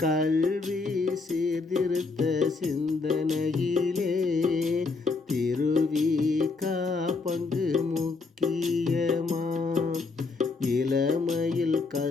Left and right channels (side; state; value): right; quieter; 4.1 dB